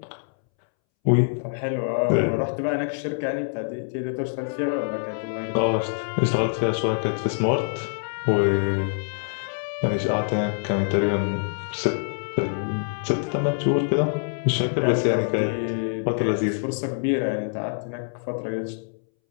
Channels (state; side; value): silent; right; 62 dB below the other